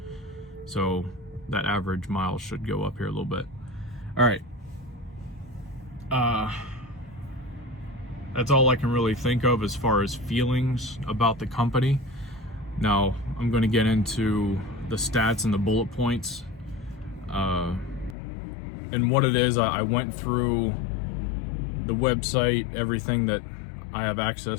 So that average miles should go up here a little bit. All right. That's all I can really think of as far as feelings about the company. Now I'm going to get into the stats and the bullet points. And what it is, I went through the website, everything that I have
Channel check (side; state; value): right; drops out; at 18.2 s